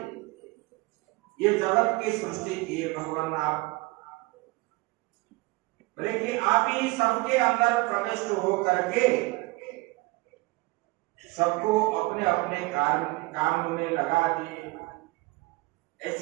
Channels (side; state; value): left; quieter; 22.8 dB